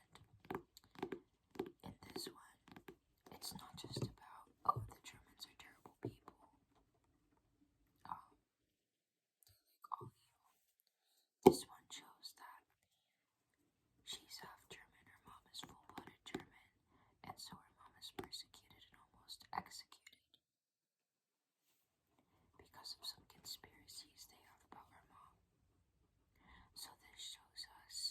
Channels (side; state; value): both; identical; correlation 1.00